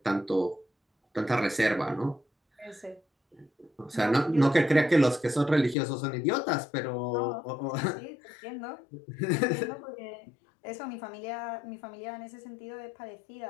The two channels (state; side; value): drops out; right; at 5.8 s